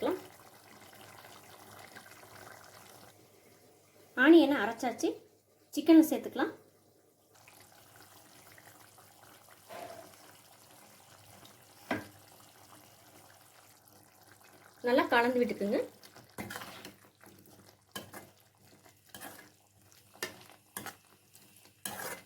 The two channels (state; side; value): identical; both; correlation 1.00